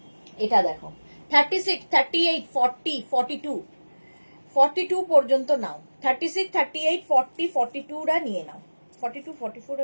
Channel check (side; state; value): both; inverted; correlation -1.00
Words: এটা দেখো, 36, 38, 40, 42, 42 পর্যন্ত নাও। 36, 38, 40, 42 রা নিয়ে নাও। 42, 44